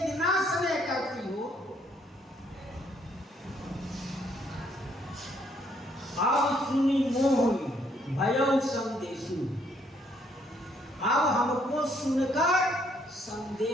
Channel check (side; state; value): both; normal; correlation 0.68